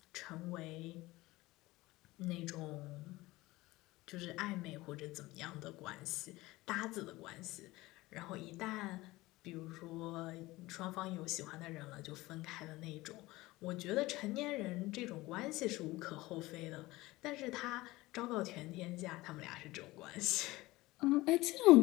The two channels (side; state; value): right; quieter; 19.5 dB